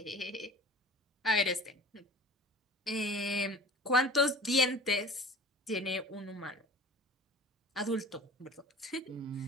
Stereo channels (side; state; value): both; normal; correlation 0.42